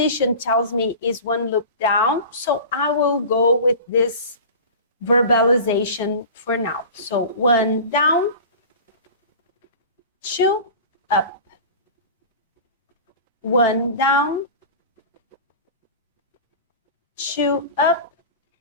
tells me is 1 loop down, so I will go with this verbalization for now. So 1 down, 2 up, 1 down, 2 up,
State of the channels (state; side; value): inverted; both; correlation -0.35